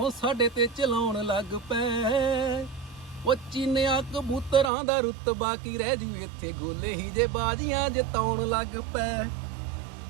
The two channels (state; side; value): drops out; left; at 4.7 s